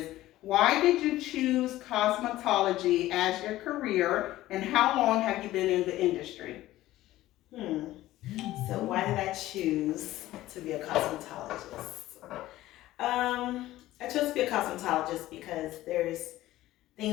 why did you choose cosmetology as your career, and how long have you been in the industry? So why did I choose to be a cosmetologist? I chose to be a cosmetologist because there's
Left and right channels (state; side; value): quieter; right; 15.6 dB